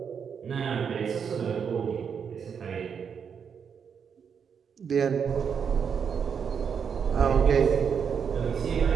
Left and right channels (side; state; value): left; quieter; 7.0 dB